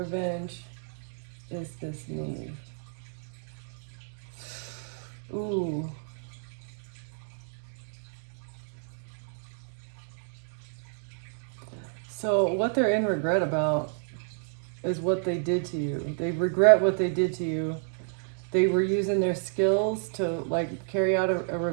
is this need. Ooh. So what they're in regret about is what they did to you. They regret what they did to you. They were using their skills to like carry out a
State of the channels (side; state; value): left; silent; digital silence